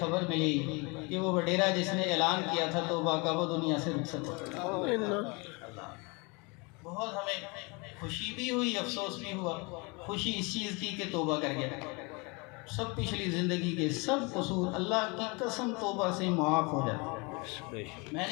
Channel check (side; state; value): right; quieter; 29.1 dB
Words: ملی کہ وہ وڈیرا جس نے اعلان کیا تھا توبہ کا، وہ دنیا سے رخصت ہو گیا. بہت ہمیں خوشی بھی ہوئی، افسوس بھی ہوا. خوشی اس چیز کی کہ توبہ کر گیا، سب پچھلی زندگی کے سب قصور اللہ کی قسم توبہ سے معاف ہو جاتے. میں